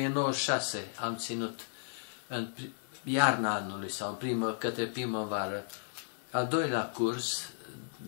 am ținut în iarna anului sau către primăvară al doilea curs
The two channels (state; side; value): silent; right; digital silence